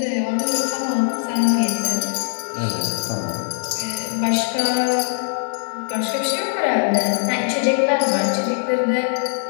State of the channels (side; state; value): right; silent; 65 dB below the other